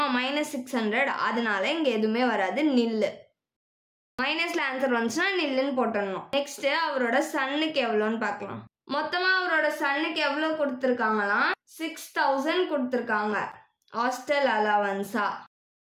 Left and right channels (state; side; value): identical; both; correlation 1.00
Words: -600. அதனால இங்க எதுவுமே வராது, நில்லு. மைனஸ்ல ஆன்சர் வந்துச்சுன்னா நில்லுன்னு போட்டுடணும். நெக்ஸ்ட் அவரோட சன்னுக்கு எவ்வளோன்னு பார்க்கலாம். மொத்தமாக அவரோட சன்னுக்கு எவ்வளோ கொடுத்துருக்காங்களாம் 6000 கொடுத்துருக்காங்க ஹாஸ்டல் அலவன்ஸா